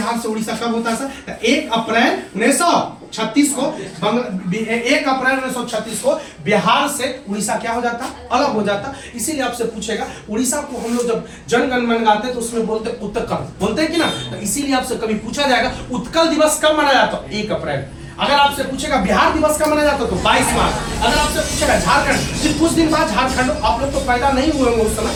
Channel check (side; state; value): both; identical; correlation 1.00